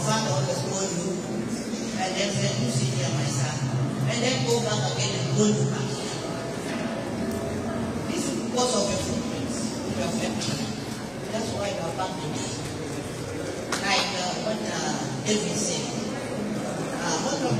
father always told you, and then said, you sit here, my son, and then go back again and go to back. This is because of your footprints, your family. That's why you are back today. Like what David said,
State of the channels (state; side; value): noise; left; hum, 24 dB below the sound